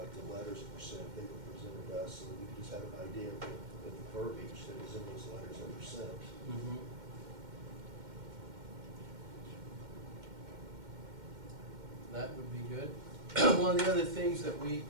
the letters that were sent, they were presented to us, so that we could just have an idea of the verbiage that was in those letters that were sent. Mm-hmm. That would be good. One of the other things that we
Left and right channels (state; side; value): late; left; 2.1 ms